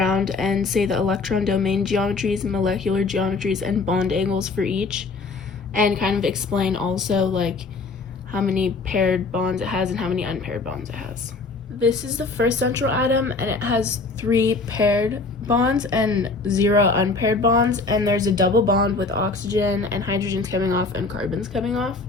and say the electron domain geometries, molecular geometries, and bond angles for each, and kind of explain also like how many paired bonds it has and how many unpaired bonds it has. This is the first central atom, and it has 3 paired bonds and 0 unpaired bonds, and there's a double bond with oxygen and hydrogens coming off and carbons coming off.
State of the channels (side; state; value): right; quieter; 3.9 dB